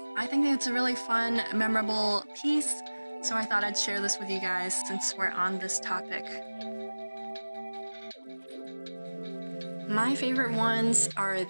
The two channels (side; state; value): both; inverted; correlation -1.00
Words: I think it's a really fun, memorable piece, so I thought I'd share this with you guys since we're on this topic. My favorite ones are